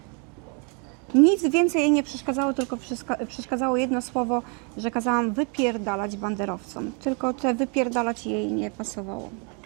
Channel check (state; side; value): quieter; left; 36.5 dB